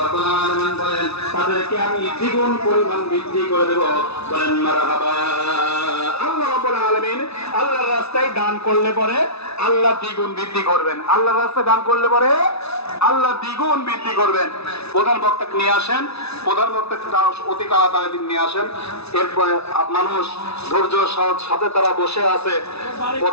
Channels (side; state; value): right; late; 0.79 ms